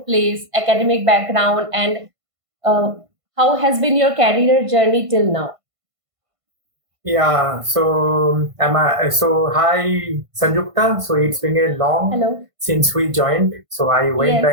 place, academic background, and uh, how has been your career journey till now? Yeah, hi Sanjukta. So it's been a long Hello. since we joined. So I went Yes.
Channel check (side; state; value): left; late; 1.5 ms